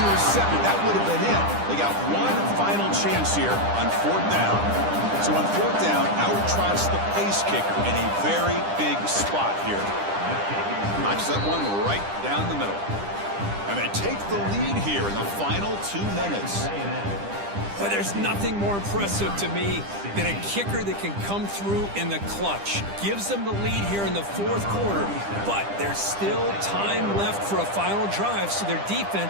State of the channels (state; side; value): late; left; 10 ms